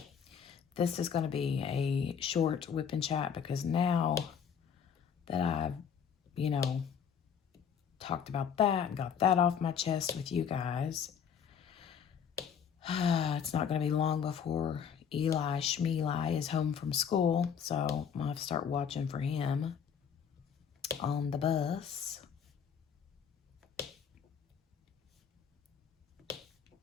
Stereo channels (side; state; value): right; quieter; 7.3 dB